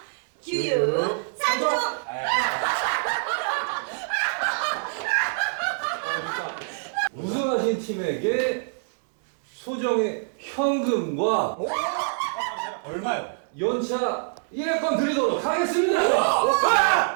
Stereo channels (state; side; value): silent; left; digital silence